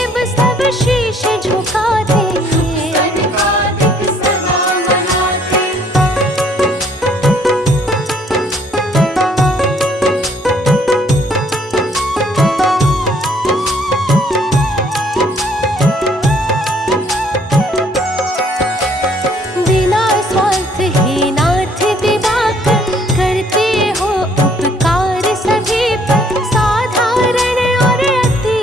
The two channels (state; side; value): normal; both; correlation 0.63